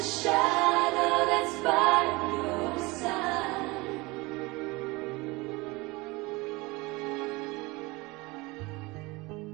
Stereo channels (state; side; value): quieter; left; 23.7 dB